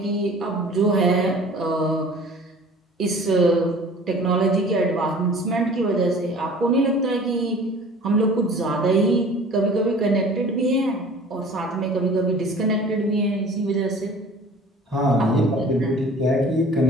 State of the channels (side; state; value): both; normal; correlation 0.46